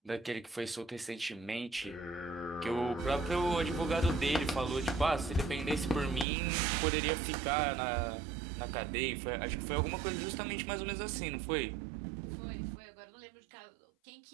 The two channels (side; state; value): left; drops out; at 6.2 s